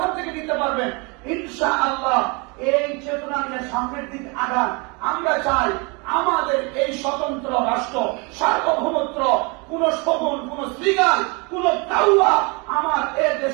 থেকে নিতে পারবেন ইনশাআল্লাহ। এই চেতনা নিয়ে সামনের দিক আগান। আমরা চাই আমাদের এই স্বতন্ত্র রাষ্ট্র, সার্বভৌমত্ব, কোন শগুন, কোন শ্রীগাল, কোন কাউয়া আমার এ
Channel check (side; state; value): left; quieter; 30.1 dB